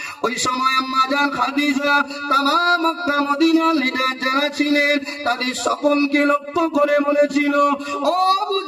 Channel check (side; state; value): both; identical; correlation 1.00